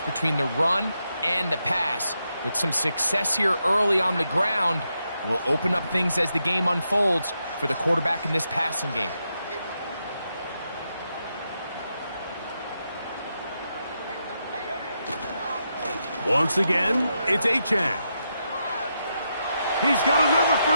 the run and the pass. With some success here early on the ground, will open up things as the game unfolds for the quarterback in this passing game. Once again, it's Achane. He's got another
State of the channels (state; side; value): inverted; both; correlation -0.83